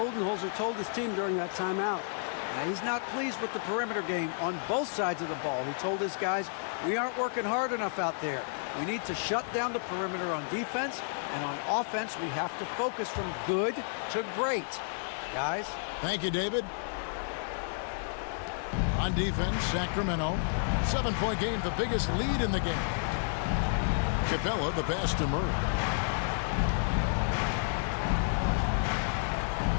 told his team during that timeout. Now, he's not pleased with the perimeter game on both sides of the ball. He told his guys, we aren't working hard enough out there. We need to shut down the perimeter on defense, and on offense, we have to focus from good to great. Guys? Thank you, David. On defense, Sacramento. 7-point game, the biggest lead in the game. Capella, the pass to Murray.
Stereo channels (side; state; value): right; silent; digital silence